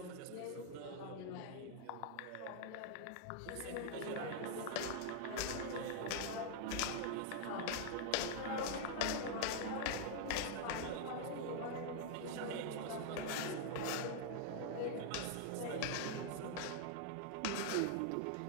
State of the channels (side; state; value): both; different; correlation 0.00